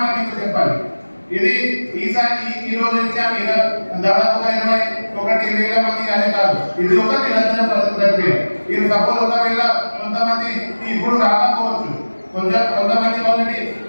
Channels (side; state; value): both; inverted; correlation -1.00